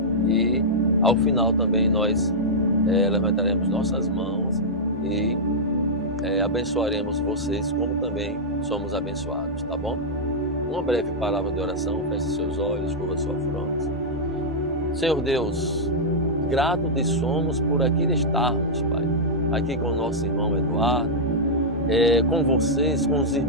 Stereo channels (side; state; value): both; normal; correlation -0.08